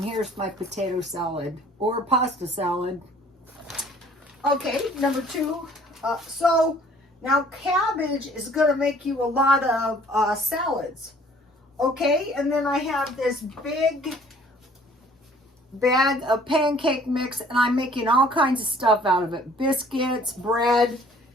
here's my potato salad or pasta salad. Okay, number 2. So now cabbage is going to make you a lot of salads. Okay, and then I have this big bag of pancake mix, and I'm making all kinds of stuff out of it. Biscuits, bread,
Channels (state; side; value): normal; both; correlation 0.56